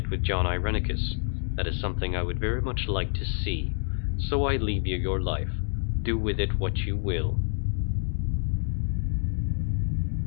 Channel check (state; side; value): silent; right; digital silence